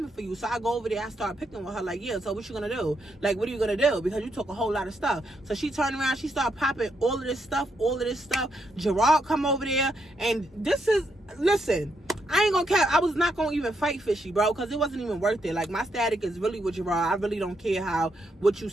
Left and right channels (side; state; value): both; normal; correlation 0.79